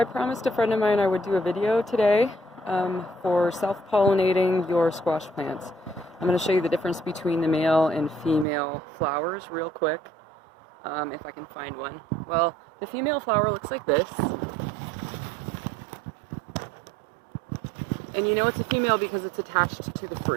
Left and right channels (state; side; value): drops out; left; at 8.5 s